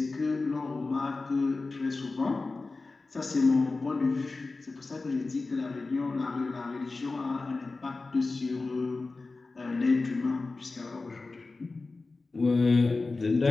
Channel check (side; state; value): right; quieter; 3.6 dB